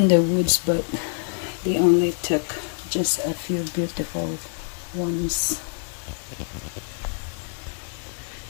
the woods, but they only took just a few beautiful ones.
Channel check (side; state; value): right; silent; digital silence